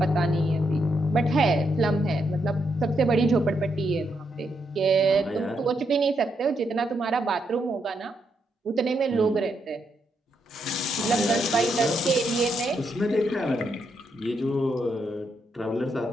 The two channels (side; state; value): both; normal; correlation 0.79